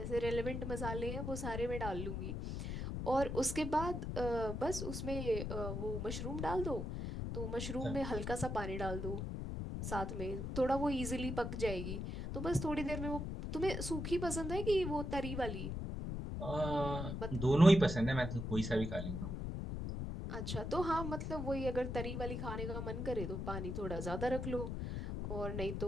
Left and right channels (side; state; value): left; noise; rumble, 4 dB below the sound